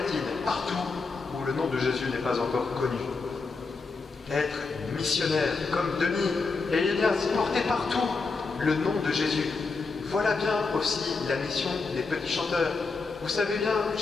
partout où le nom de Jésus n'est pas encore connu. Être missionnaire comme Denis et Ignace, porter partout le nom de Jésus. Voilà bien aussi la mission des petits chanteurs. Vous savez bien,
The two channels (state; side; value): quieter; right; 4.2 dB